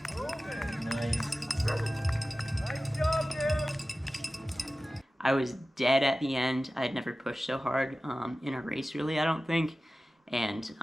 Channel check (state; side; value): normal; both; correlation 0.96